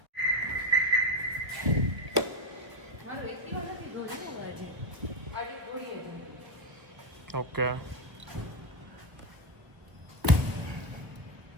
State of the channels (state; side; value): late; left; 1.3 ms